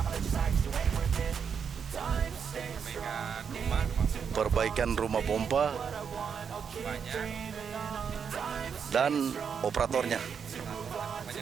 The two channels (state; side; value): quieter; left; 6.8 dB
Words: rumah pompa dan operatornya.